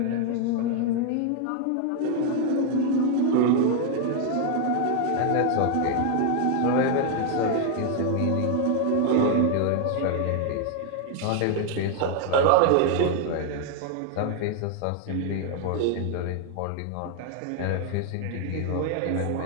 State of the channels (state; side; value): different; both; correlation 0.00